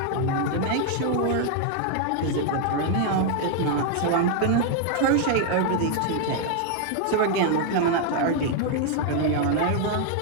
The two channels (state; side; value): different; both; correlation 0.00